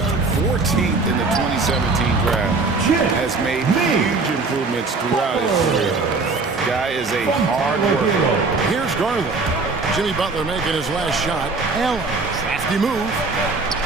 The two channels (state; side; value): quieter; left; 3.9 dB